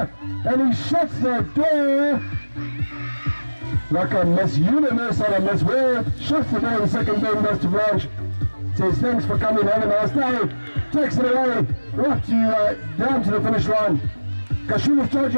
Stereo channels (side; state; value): both; inverted; correlation -1.00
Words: he shuts the door like a Miss Universe or a Miss World. Shuts the door in the second bend, goes to Blanche. Says thanks for coming, have a nice day. Takes it away, right to down to the finish line. Kashula's